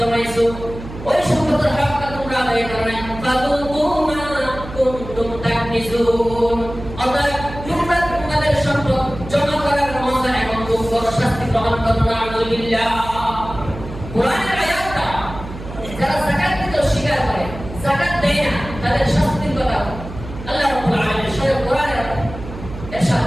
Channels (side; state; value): right; noise; hum, 12 dB below the sound